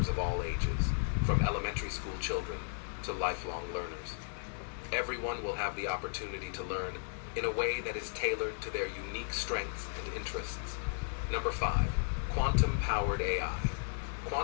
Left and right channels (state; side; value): silent; right; 54 dB below the other